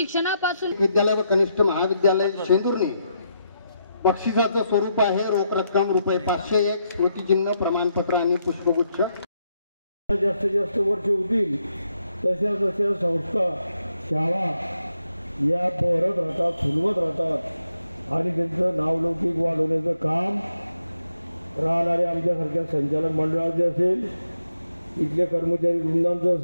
विद्यालय व कनिष्ठ महाविद्यालय शेंदुर्णी बक्षिसाचं स्वरूप आहे रोख रक्कम ₹501, स्मृतिचिन्ह, प्रमाणपत्र आणि पुष्पगुच्छ. जास्तीत जास्त वर्ष होतील तशा संस्था, शाळा या बहरत राहतात, फुलवत राहतात आणि त्यांचं नावलौकिक वाढवण्याचं काम राहणारे आमच्यासारख्या संचालक मंडळाचे असेल, इथल्या कर्मचारी वृंदांचं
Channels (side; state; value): both; inverted; correlation -0.80